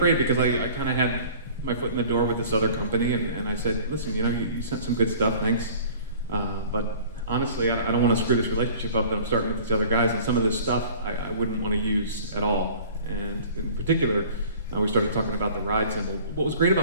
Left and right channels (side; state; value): both; inverted; correlation -0.47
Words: because I kind of had my foot in the door with this other company, and I said, listen, you sent some good stuff, thanks, but honestly, I don't want to screw this relationship up that I'm starting with these other guys, and some of this stuff I wouldn't want to use at all. And in particular, we started talking about the ride symbol. What was great